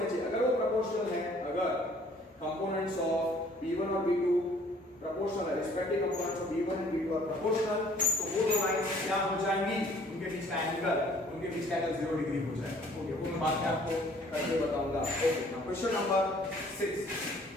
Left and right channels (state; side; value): normal; both; correlation 0.57